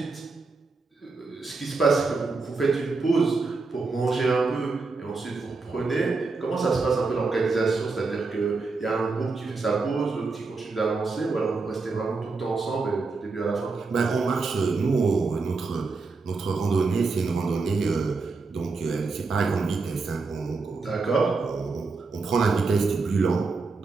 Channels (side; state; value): left; quieter; 4.1 dB